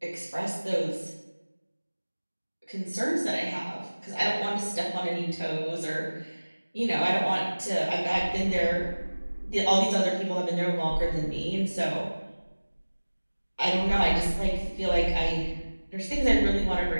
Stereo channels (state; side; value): inverted; both; correlation -1.00